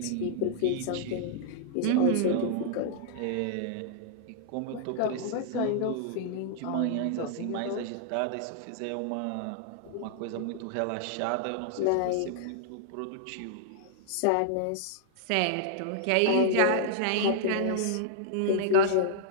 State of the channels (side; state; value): both; different; correlation -0.01